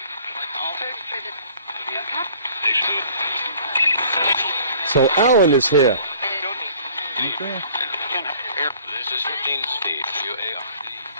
So Alan is here. Okay. This is Dean Steve,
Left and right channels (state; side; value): inverted; both; correlation -0.53